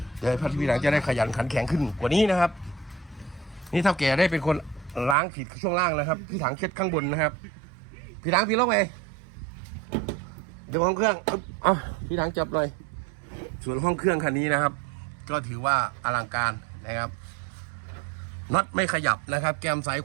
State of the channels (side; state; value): left; drops out; at 5.2 s